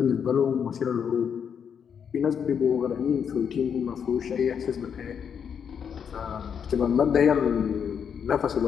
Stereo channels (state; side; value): quieter; right; 7.5 dB